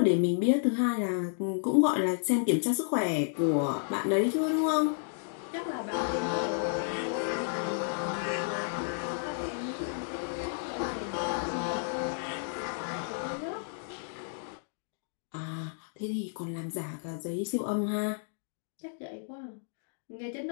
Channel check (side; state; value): right; silent; digital silence